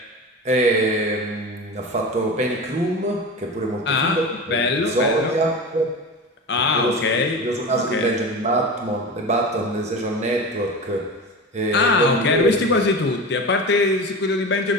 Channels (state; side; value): normal; both; correlation 0.28